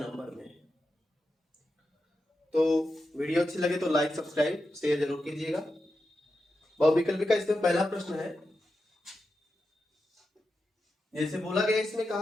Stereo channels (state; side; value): normal; both; correlation 0.89